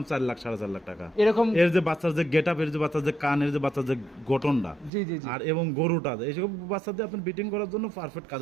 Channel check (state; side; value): drops out; left; at 4.9 s